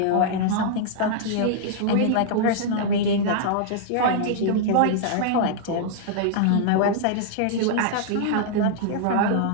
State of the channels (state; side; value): different; both; correlation -0.02